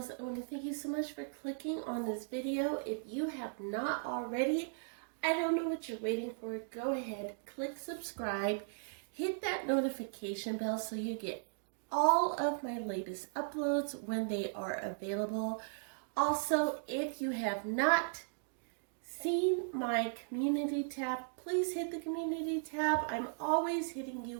I want to thank you so much for clicking on this video. If you have not already, I don't know what you're waiting for. Go ahead, click subscribe, hit that notification bell so you get all of my latest uploads when they are available. Also, if you have not seen my community tab, please hit the community tab. I'm always hitting you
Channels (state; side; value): silent; left; digital silence